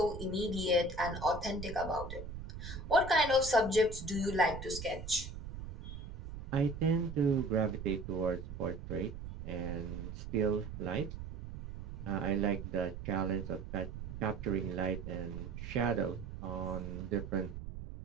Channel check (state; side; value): noise; right; rumble, 9 dB below the sound